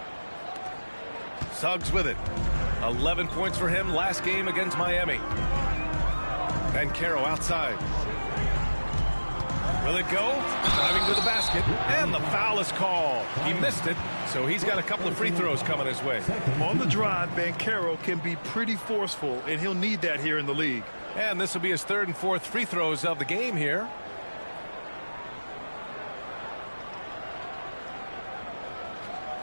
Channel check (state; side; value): inverted; both; correlation -1.00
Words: Suggs with it. 11 points for him last game against Miami. And Caro outside. Will it go? Driving to the basket. And the foul is called. He missed it, so he's got a couple of free throws coming his way. On the drive, Banchero can be pretty forceful, and he'll need that here in the league. And this will be his 3rd and 4th free throws of the game here.